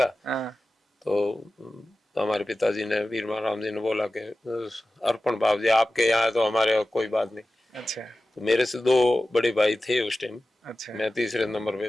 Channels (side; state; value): both; normal; correlation 0.95